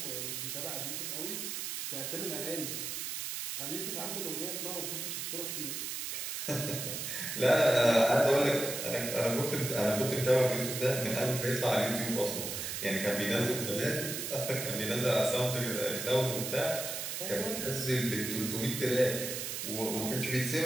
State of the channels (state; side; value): noise; right; hiss, 4 dB below the sound